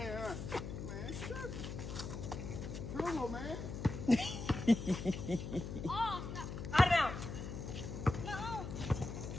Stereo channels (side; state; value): left; noise; hum, 7 dB below the sound